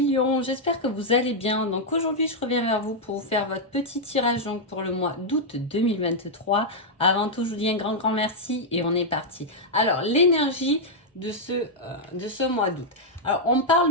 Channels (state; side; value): normal; both; correlation -0.04